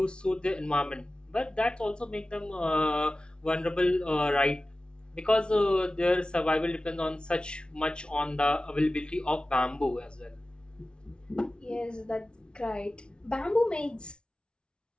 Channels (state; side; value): late; right; 0.056 ms